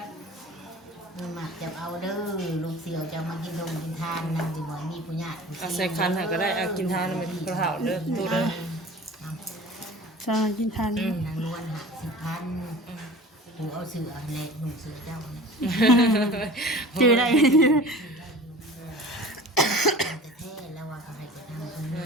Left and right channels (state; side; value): normal; both; correlation 0.40